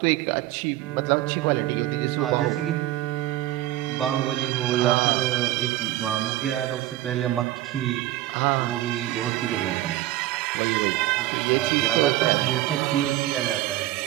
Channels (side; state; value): left; quieter; 15.1 dB